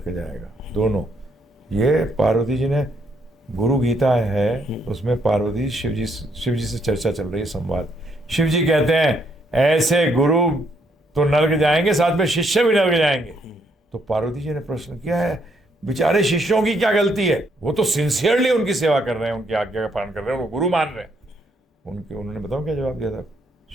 जाएगा, दोनों। ये पार्वती जी ने, गुरु गीता है, उसमें पार्वती शिव जी से चर्चा चल रही है, संवाद। शिव जी कहते हैं ऐसे गुरु तो नरक जाएंगे, साथ में शिष्य भी नरक जाएंगे। तो पार्वती जी ने प्रश्न किया है, बेचारे शिष्यों की क्या गलती है? वो तो सिंसियरली उनकी सेवा कर रहे हैं, उनकी आज्ञा का पालन कर रहे हैं, उनको गुरु मान रहे हैं। उन्होंने बताओ क्या जवाब दिया था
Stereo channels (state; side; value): normal; both; correlation 0.72